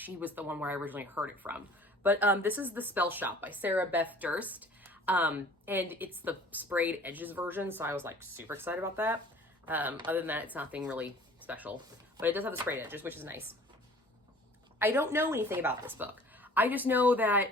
was the one where I originally heard it from. But this is The Spell Shop by Sarah Beth Durst. And it's the sprayed edges version, so I was like super excited about that. Other than that, it's nothing really special, but it does have the sprayed edges, which is nice. I don't know anything about this book. I just know that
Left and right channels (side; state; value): both; normal; correlation 0.49